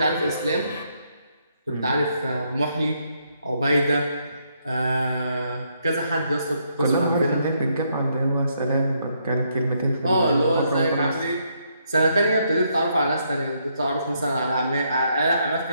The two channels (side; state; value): both; inverted; correlation -0.75